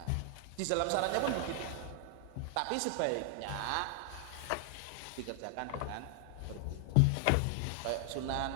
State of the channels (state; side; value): different; both; correlation 0.00